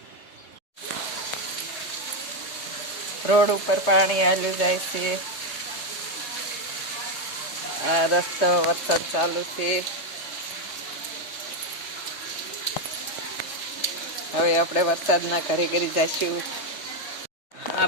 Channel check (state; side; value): late; right; 3.2 ms